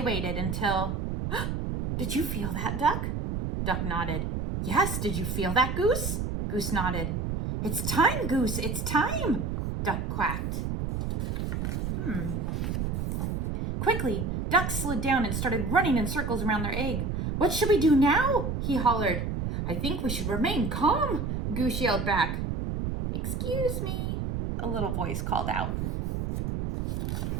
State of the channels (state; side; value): noise; right; rumble, 2 dB below the sound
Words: until... Did you feel that, Duck? Duck nodded. Yes, did you feel that, Goose? Goose nodded. It's time, Goose, it's time, Duck quacked. Quickly, Duck slid down and started running in circles around their egg. What should we do now? He hollered. I think we should remain calm, Goose yelled back. Excuse me, a little voice called out.